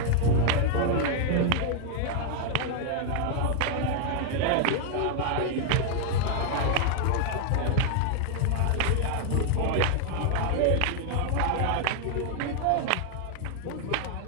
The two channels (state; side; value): different; both; correlation 0.00